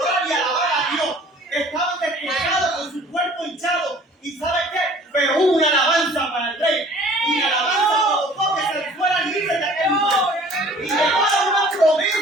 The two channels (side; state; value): both; normal; correlation 0.51